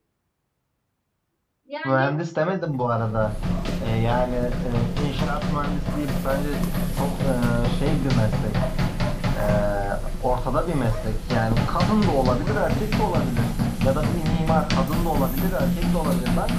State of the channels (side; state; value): both; identical; correlation 1.00